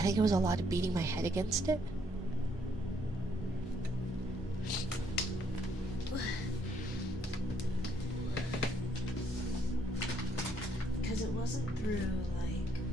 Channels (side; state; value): both; normal; correlation 0.70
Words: think it was a lot of beating my head against it. Because it wasn't through, like,